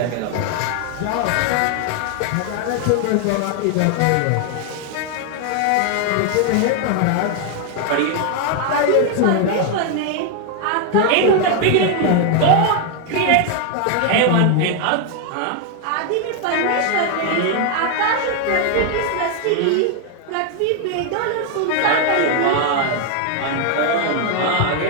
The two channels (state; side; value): different; both; correlation 0.01